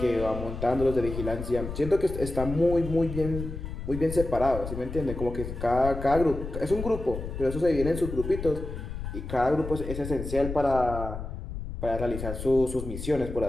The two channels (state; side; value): noise; left; rumble, 7 dB below the sound